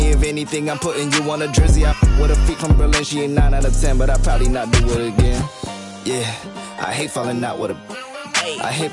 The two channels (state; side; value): identical; both; correlation 1.00